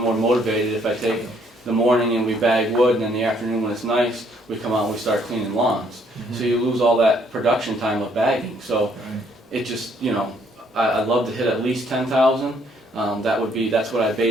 more motivated. If I take the morning and we bag wood, and then the afternoon when it's nice, we come out and we start cleaning lawns. So you lose all that production time of bagging. So it just, you know, I'd love to hit at least 10,000. That's what I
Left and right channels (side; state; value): both; normal; correlation 0.67